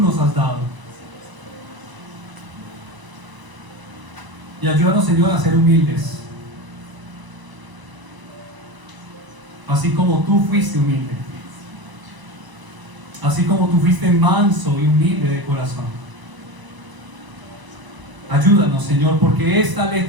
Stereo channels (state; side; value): late; left; 1.0 ms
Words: has dado. Y ayúdanos, Señor, a ser humildes. Así como tú fuiste humilde. Así como tú fuiste manso y humilde de corazón. Ayúdanos, Señor, porque estas